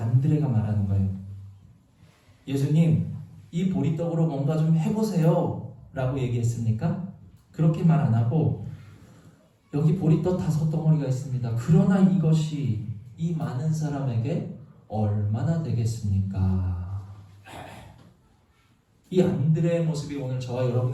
안드레가 말하는 거예요. 예수님, 이 보리떡으로 뭔가 좀 해보세요 라고 얘기했습니까? 그렇게 말 안 하고 여기 보리떡 5덩어리가 있습니다. 그러나 이것이 이 많은 사람에게 얼마나 되겠습니까? 이 안드레의 모습이 오늘 저와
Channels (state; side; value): identical; both; correlation 1.00